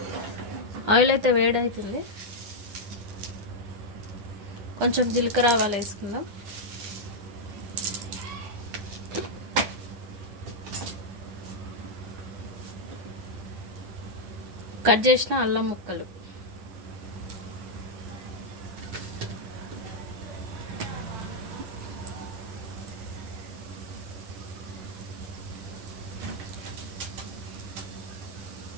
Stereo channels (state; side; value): late; left; 9.8 ms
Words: ఆయిల్ అయితే వేడవుతుంది. కొంచెం జీలకర్ర ఆవాలు వేసుకుందాం. కట్ చేసిన అల్లం ముక్కలు,